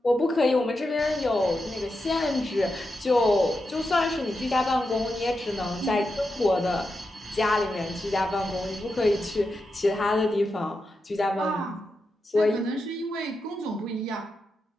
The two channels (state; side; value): normal; both; correlation 0.88